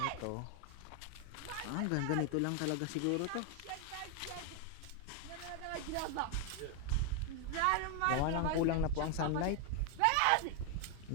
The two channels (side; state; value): both; different; correlation 0.01